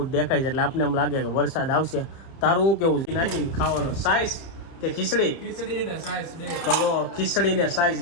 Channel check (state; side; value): late; right; 30 ms